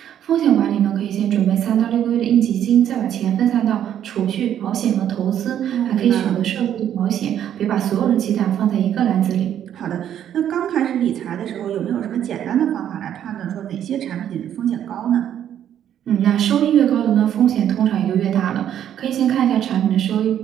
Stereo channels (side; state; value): left; quieter; 10.2 dB